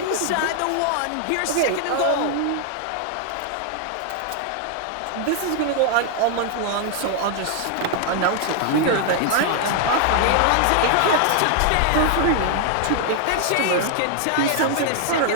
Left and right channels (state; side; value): different; both; correlation 0.00